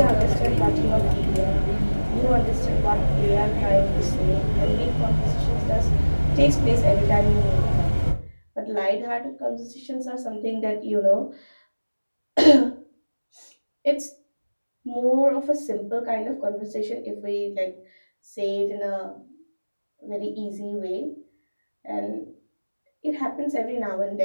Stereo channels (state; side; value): inverted; both; correlation -1.00